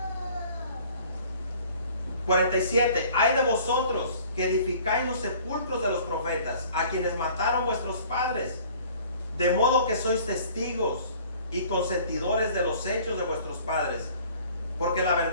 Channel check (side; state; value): both; inverted; correlation -0.52